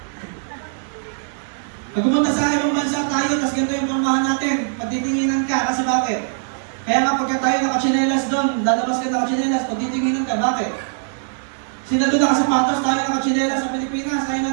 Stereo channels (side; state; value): left; silent; digital silence